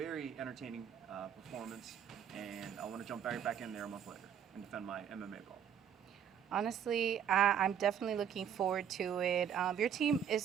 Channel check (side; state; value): left; quieter; 8.7 dB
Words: entertaining performance, and I want to jump right back in there a month later and defend my MMA belt. Honestly, I'm definitely looking forward to it. Your team is